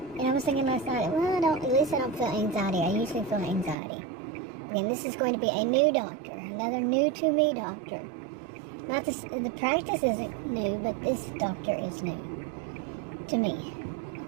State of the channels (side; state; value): left; drops out; at 3.8 s